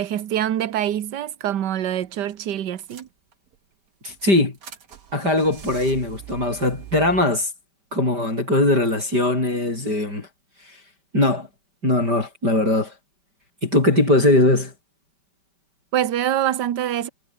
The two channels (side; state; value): left; late; 5.0 ms